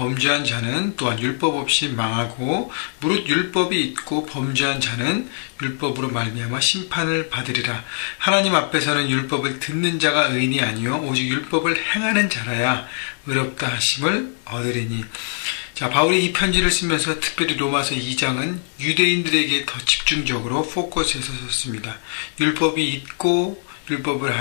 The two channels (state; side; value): silent; right; digital silence